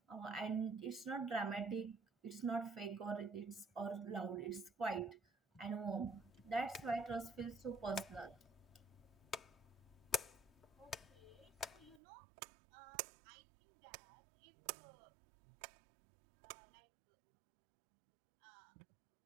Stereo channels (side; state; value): left; drops out; at 12.0 s